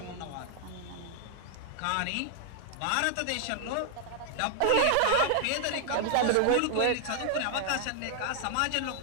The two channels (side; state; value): both; different; correlation 0.00